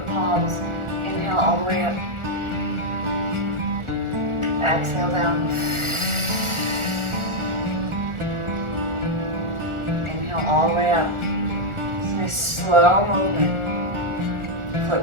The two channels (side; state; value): left; late; 1.4 ms